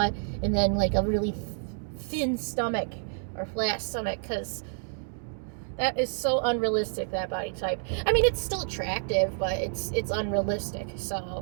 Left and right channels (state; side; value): silent; left; digital silence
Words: and then like a really thin stomach or flat stomach, because that is so unrealistic, that body type. I mean, it's still attractive, but it's unrealistic.